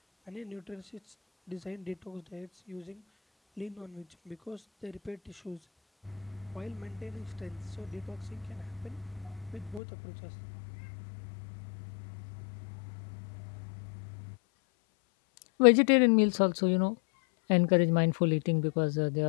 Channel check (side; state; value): right; drops out; at 9.8 s